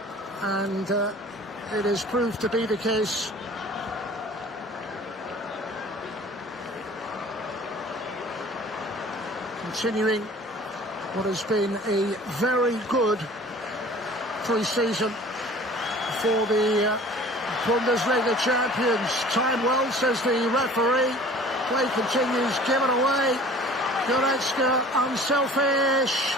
and it has proved to be the case. Continuing what has been a very good pre-season for the Bundesliga champions. Time well, says the referee. Play continues, given away. Goretzka, unselfish.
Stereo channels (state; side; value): normal; both; correlation 0.47